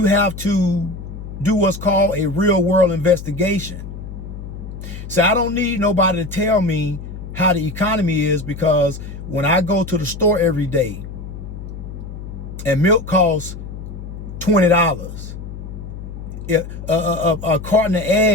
have to do what's called a real world investigation. So I don't need nobody to tell me how the economy is, because when I go to the store every day and milk costs $20, a carton of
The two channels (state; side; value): noise; left; hum, 10 dB below the sound